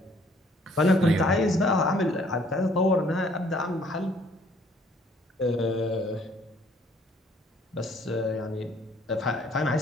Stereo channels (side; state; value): both; normal; correlation 0.61